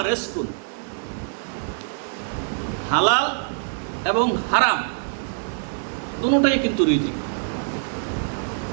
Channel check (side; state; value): left; silent; digital silence